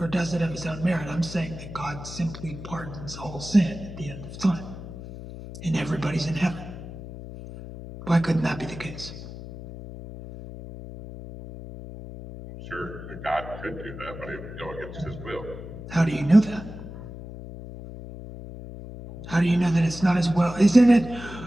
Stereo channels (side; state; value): left; noise; hum, 12 dB below the sound